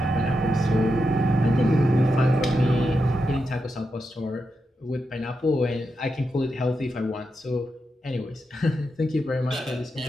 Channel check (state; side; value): normal; both; correlation 0.86